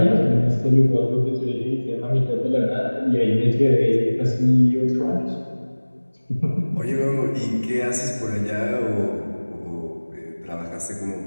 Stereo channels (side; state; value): both; inverted; correlation -1.00